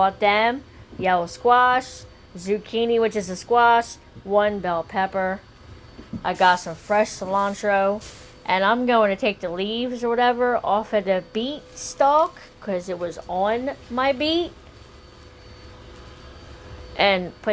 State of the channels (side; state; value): both; identical; correlation 1.00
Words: them. Yellow squash, zucchini, which is a squash, 1 bell pepper. I got some fresh cilantro. And I'm going to take the leaves or whatever off of the beet stalk because it was on my beet. And